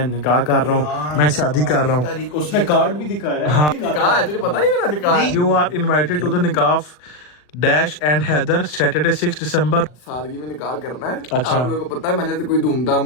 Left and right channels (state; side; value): late; right; 40 ms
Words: निकाह कर रहा हूँ, मैं शादी कर रहा हूँ। उसने कार्ड भी दिखाया। हाँ। निकाह है, तुझे पता नहीं मेरा निकाह है। You are invited to the nikah dash and Haider Saturday 6 December. सादगी में निकाह करना है। अच्छा। आप लोगों को पता है मैंने तो कोई